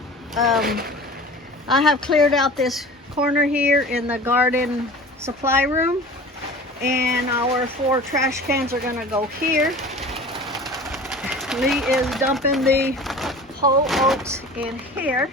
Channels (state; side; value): normal; both; correlation 0.39